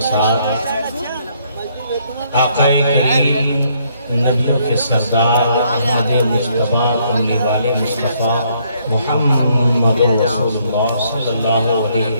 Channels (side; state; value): both; inverted; correlation -0.70